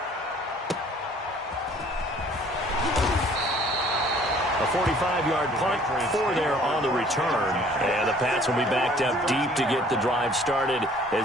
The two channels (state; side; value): normal; both; correlation 0.55